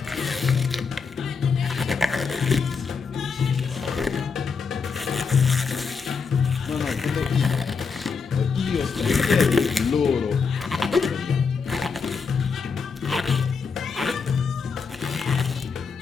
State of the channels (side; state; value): right; quieter; 5.4 dB